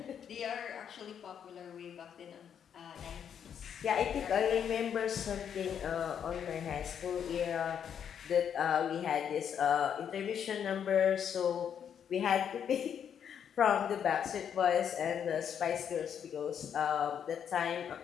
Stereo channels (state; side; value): quieter; right; 8.3 dB